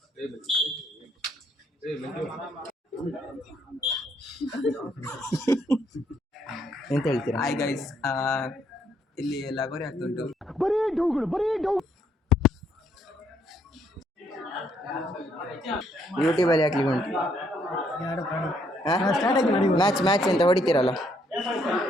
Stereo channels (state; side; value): normal; both; correlation 0.70